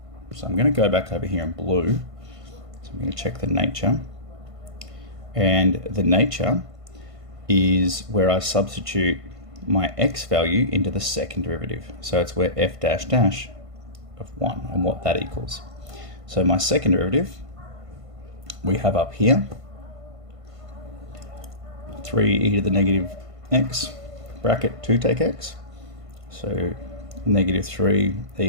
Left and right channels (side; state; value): left; late; 1.5 ms